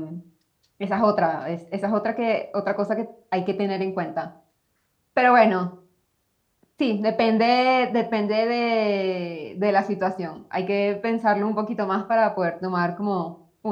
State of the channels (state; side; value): identical; both; correlation 1.00